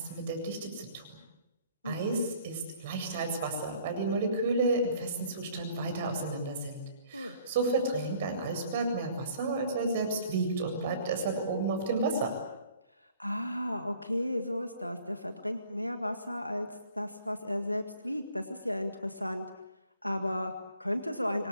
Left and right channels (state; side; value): inverted; both; correlation -0.56